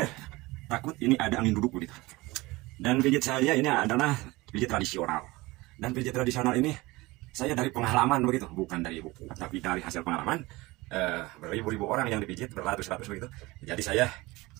Takut ini ada angin duduk begitu. Dan pijit saya ini adalah pijit tradisional. Dan pijit tradisional ini saya dari pengalaman begitu, bukan dari buku, tapi dari hasil pengalaman. Beribu-ribu orang yang dipijit, beratus-ratus begitu. Jadi saya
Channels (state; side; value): quieter; left; 21.4 dB